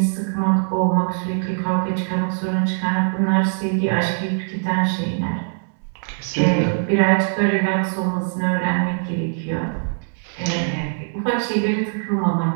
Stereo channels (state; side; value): silent; left; 65 dB below the other